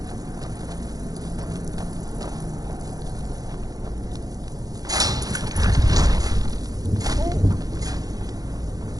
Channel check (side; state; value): left; late; 0.18 ms